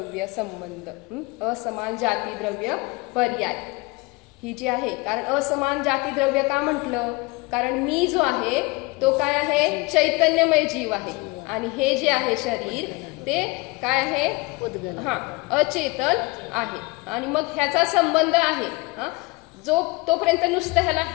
संबंध, असमान जाती द्रव्य पर्याय ही जी आहे. कारण असमान जाती द्रव्य का म्हटलं, कारण मी जो आहे तो काय आहे, चैतन्यमय जीव आहे आणि हे जे आहे शरीर ते काय आहे, अचेतन आहे. आणि मग ह्याचा संबंध आहे जो तोपर्यंत नुसतं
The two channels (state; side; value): quieter; right; 24.8 dB